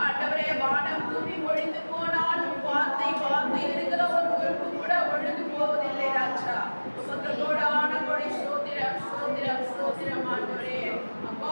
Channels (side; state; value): both; inverted; correlation -1.00